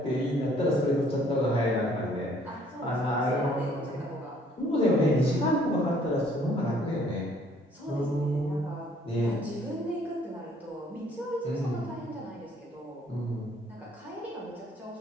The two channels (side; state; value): both; normal; correlation 0.61